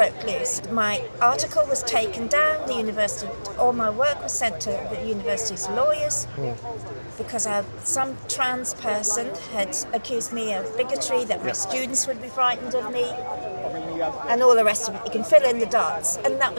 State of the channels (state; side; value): inverted; both; correlation -1.00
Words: loose. My article was taken down, the university, all my work was sent to the university's lawyers because some trans person had accused me of bigotry, that my students would be frightened of me, and all the rest of it. You can fill in the dots. And that